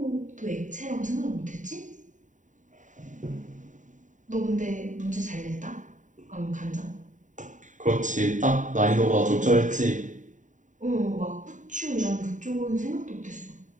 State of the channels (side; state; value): left; late; 0.36 ms